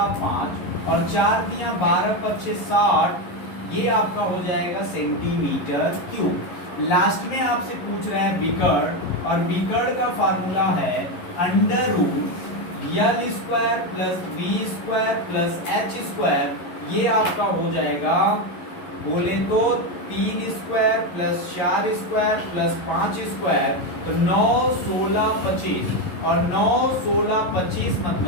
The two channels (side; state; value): right; late; 11 ms